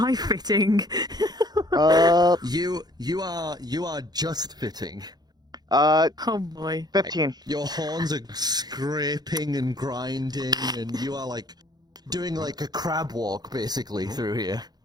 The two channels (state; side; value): late; left; 0.19 ms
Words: fitting? You are just fitting. Oh boy. 15. Your horns are scraping and grinding, and you are like doing like a crab walk basically through here.